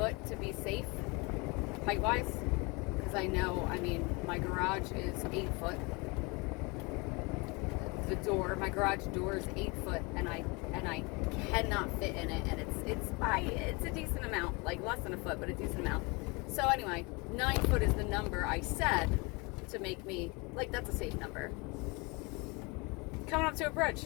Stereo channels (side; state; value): right; quieter; 27.9 dB